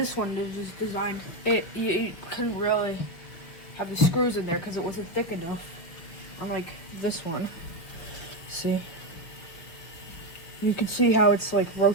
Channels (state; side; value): late; right; 5.7 ms